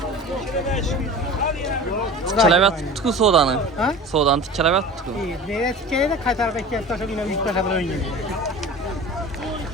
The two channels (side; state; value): both; normal; correlation 0.36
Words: Tikkelebet tutku sodanı. Ha? Sodan tikkelebet tutku. İyi. Nereye tikkeyi de kay tarafa ekmek taşı yine büyük taşı böyle oynuyor.